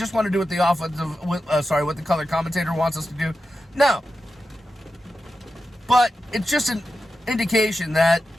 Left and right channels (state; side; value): normal; both; correlation 0.90